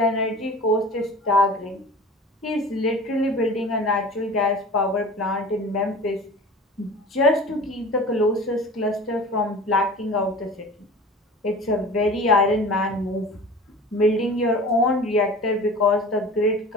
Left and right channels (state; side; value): normal; both; correlation 0.39